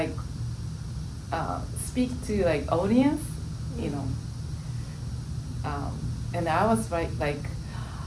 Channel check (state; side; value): identical; both; correlation 1.00